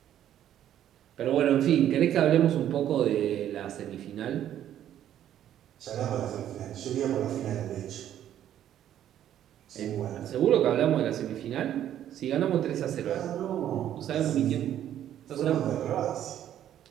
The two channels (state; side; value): quieter; left; 11.1 dB